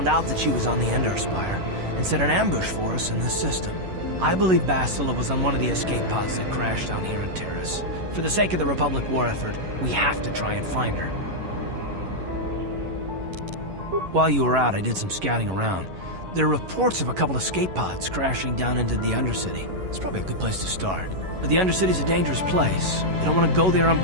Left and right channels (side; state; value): left; late; 11 ms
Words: out that she was on the Endar Spire and set an ambush for us in this system. I believe Bastila was on one of the escape pods that crashed down here in Terrace. For the sake of the Republic war effort, we have to try and find her. While you were out, I did some scouting around. There are reports of a couple escape pods crashing down into the Undercity. It's probably a good place to start. But the Undercity's a dangerous place. We don't want to go there